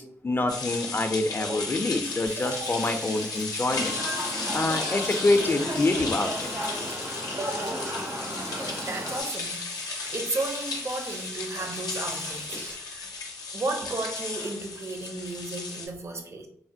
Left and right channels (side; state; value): both; normal; correlation 0.64